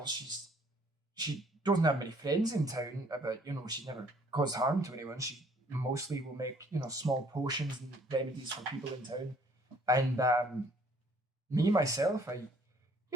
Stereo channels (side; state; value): both; normal; correlation 0.60